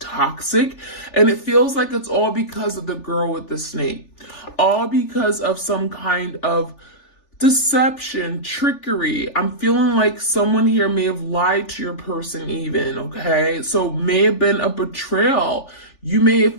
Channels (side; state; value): right; late; 3.4 ms